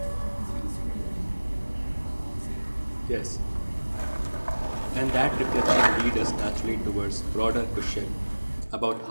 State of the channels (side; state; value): both; inverted; correlation -1.00